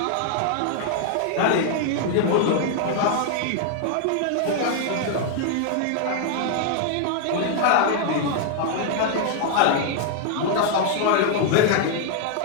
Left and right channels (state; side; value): different; both; correlation 0.00